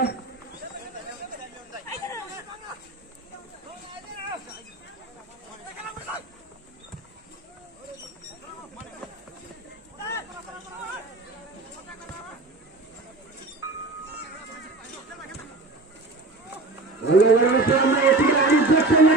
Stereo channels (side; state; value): left; quieter; 3.1 dB